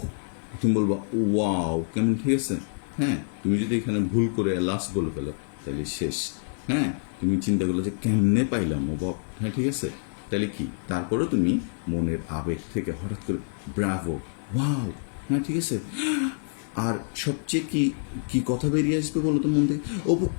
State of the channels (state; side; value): silent; right; digital silence